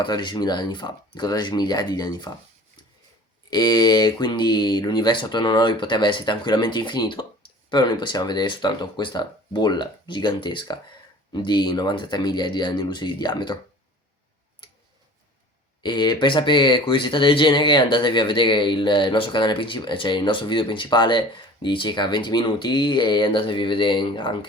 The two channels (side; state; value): both; normal; correlation 0.44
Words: anni fa, 14 miliardi di anni fa. E quindi l'universo attorno a noi potrebbe essere tranquillamente infinito, però noi possiamo vedere soltanto questa bolla gigantesca di 93 miliardi di anni luce di diametro. E per sapere curiosità del genere andatevi a vedere il nostro canale principale, cioè il nostro video principale di circa 20 minuti e andatevi a vedere